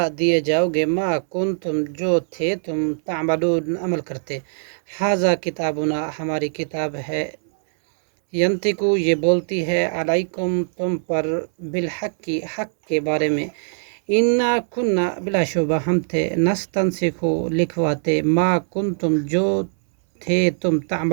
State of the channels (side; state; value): left; silent; 65 dB below the other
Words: دیے جاؤ گے ما کنتم جو تھے تم تعملون عمل کرتے، ھذا کتابنا ہماری کتاب ہے، ینطقو یہ بولتی ہے، علیکم تم پر بالحق حق کے بارے میں، انا کننا بلا شبہ ہم تھے، نستنسخ لکھواتے، ما کنتم جو تھے تم